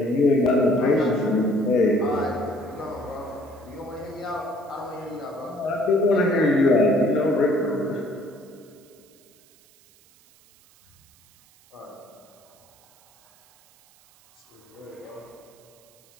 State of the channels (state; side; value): noise; right; hiss, 29 dB below the sound